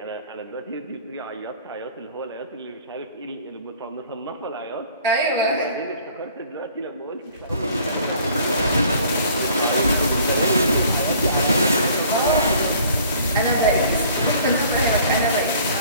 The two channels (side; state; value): both; inverted; correlation -0.54